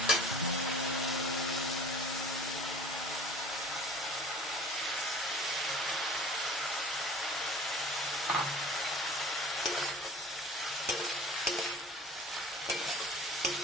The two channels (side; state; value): both; normal; correlation 0.43